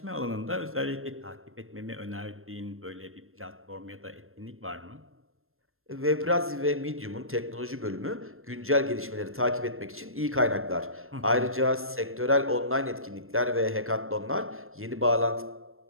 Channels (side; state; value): left; late; 0.61 ms